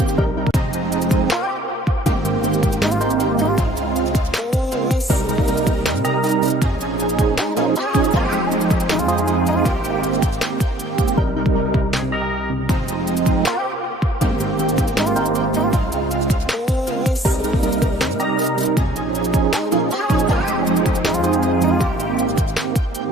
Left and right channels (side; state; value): both; normal; correlation 0.58